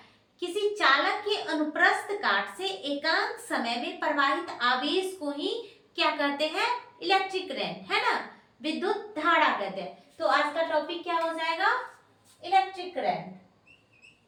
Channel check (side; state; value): both; identical; correlation 1.00